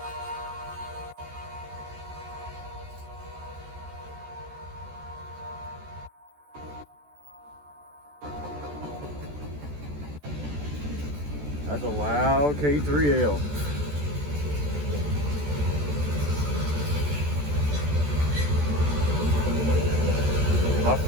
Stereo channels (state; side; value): late; left; 14 ms